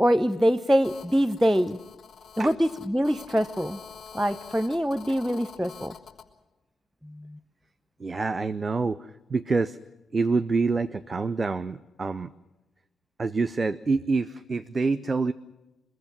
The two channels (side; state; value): both; normal; correlation 0.94